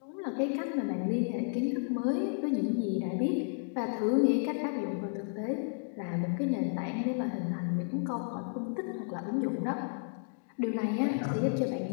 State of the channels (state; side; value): silent; right; digital silence